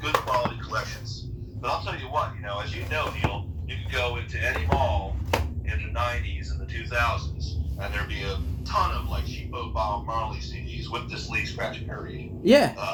good quality collections. But I'll tell you what, as you know, Neil, you could go into any mall in the 90s and the 2000s, and there'd be a ton of like cheapo Bob Marley CDs with this Lee Scratch Perry. Yeah.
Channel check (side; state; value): both; identical; correlation 1.00